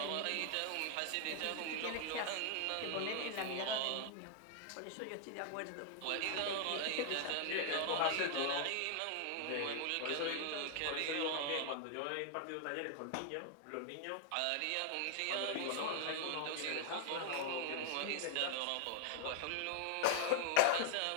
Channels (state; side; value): different; both; correlation 0.00